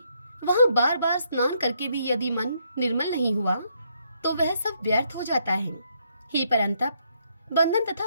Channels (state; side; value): inverted; both; correlation -0.73